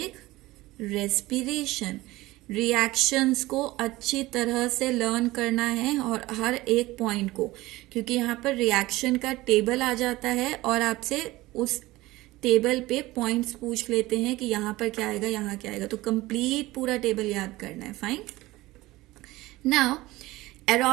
रेस्पिरेशन. रिएक्शंस को अच्छी तरह से लर्न करना है और हर एक पॉइंट को, क्योंकि यहाँ पर रिएक्शन का टेबल आ जाता है और आपसे उस टेबल पे पॉइंट्स पूछ लेते हैं कि यहाँ पर क्या आएगा, यहाँ क्या आएगा, तो कंप्लीट पूरा टेबल याद करना है. फाइन. नाउ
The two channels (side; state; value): left; quieter; 18.9 dB